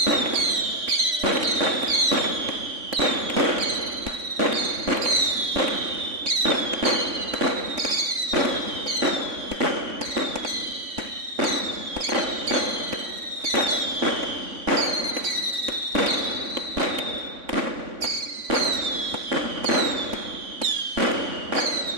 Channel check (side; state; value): left; late; 3.6 ms